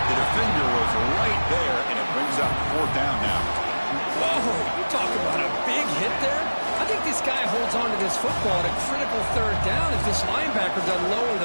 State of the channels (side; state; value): both; inverted; correlation -1.00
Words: The defender was right there, and it brings up 4th down now. Whoa, you talk about a big hit there. I think this guy holds on to this football at a critical third down if this linebacker doesn't lower